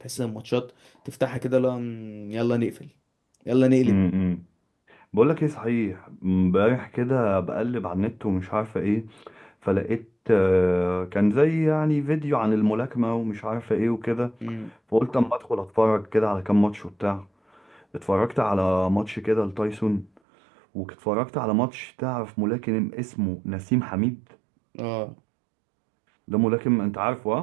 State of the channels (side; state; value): left; drops out; at 20.2 s